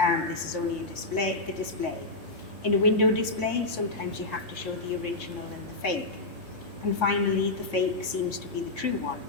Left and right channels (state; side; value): quieter; right; 3.0 dB